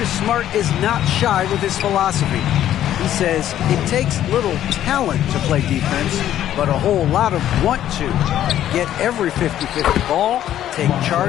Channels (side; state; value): right; quieter; 11.7 dB